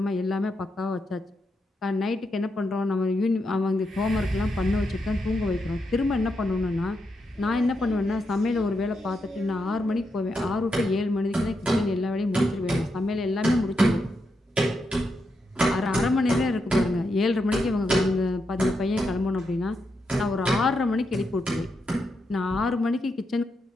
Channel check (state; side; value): normal; both; correlation 0.83